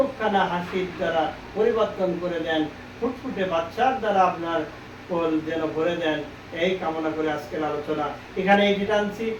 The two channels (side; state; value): both; identical; correlation 1.00